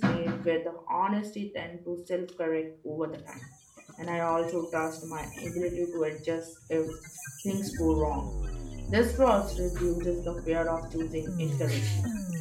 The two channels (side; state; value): both; identical; correlation 1.00